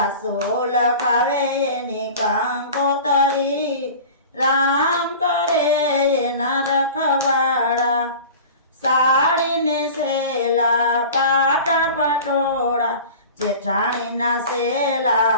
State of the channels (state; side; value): inverted; both; correlation -0.38